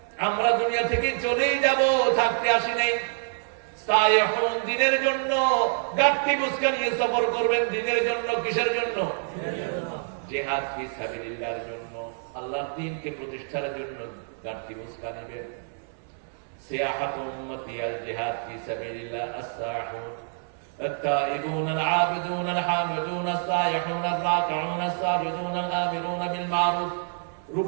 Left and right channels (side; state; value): left; silent; 60 dB below the other